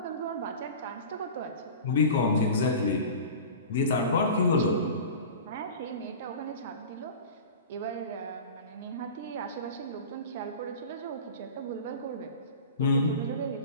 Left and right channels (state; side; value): inverted; both; correlation -0.35